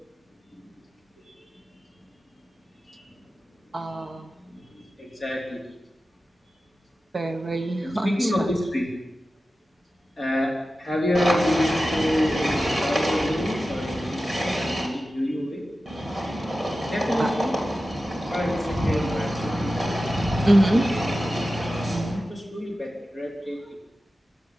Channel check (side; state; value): both; normal; correlation 0.94